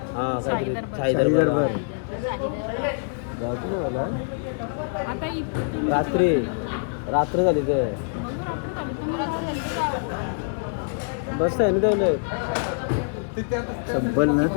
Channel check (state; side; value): silent; right; digital silence